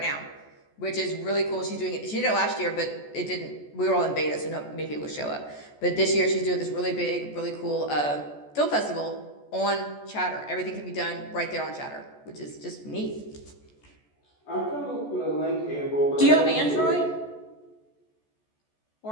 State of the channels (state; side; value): late; right; 14 ms